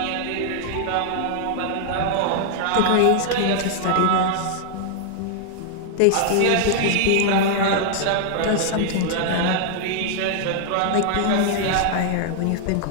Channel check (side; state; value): both; different; correlation 0.00